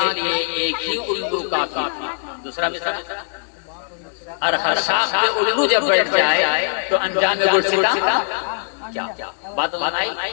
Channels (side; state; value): right; silent; digital silence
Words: لیے ایک ہی الو کافی، دوسرا مثال، ہر شاخ پہ الگو جب بیٹھ جائے تو انجام میں گلستہ کیا بات بنائی